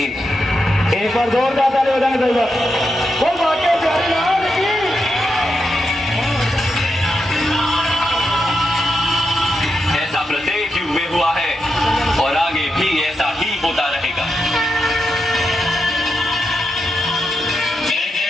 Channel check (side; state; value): both; normal; correlation 0.86